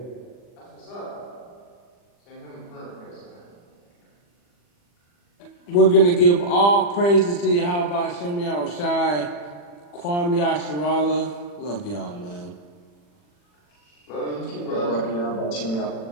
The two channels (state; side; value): late; right; 40 ms